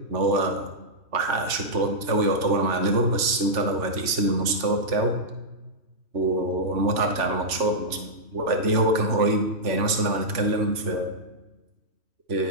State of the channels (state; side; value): late; left; 3.4 ms